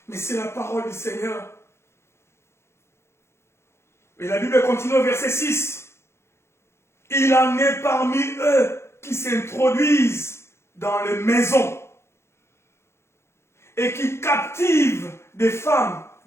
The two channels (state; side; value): late; right; 0.13 ms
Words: Mais c'est la parole du Seigneur. Et la Bible continue au verset 6. Il en est parmi eux qui s'introduisent dans les maisons et qui captivent des femmes